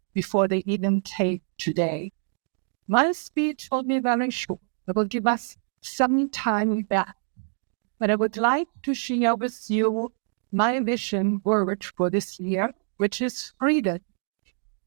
before they even take today. My speech will be very short. It will give us some time back. But I would like to share with you my vision word for this year, which is freedom.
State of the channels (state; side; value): silent; left; digital silence